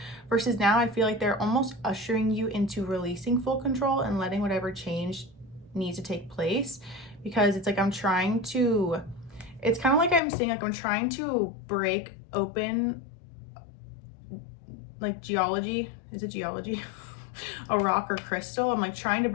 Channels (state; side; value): drops out; right; at 10.2 s